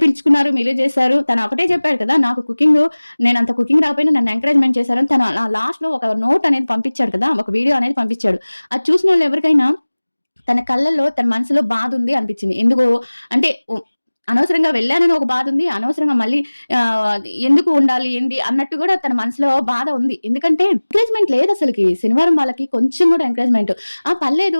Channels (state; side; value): inverted; both; correlation -1.00